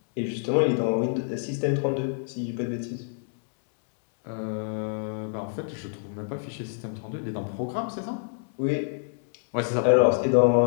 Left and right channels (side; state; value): right; silent; digital silence